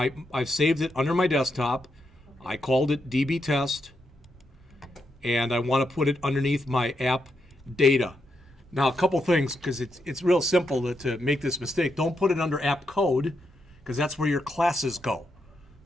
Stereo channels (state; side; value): normal; both; correlation 0.82